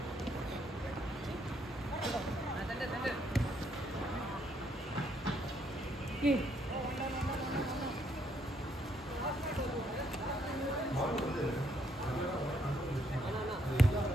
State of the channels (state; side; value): normal; both; correlation 0.72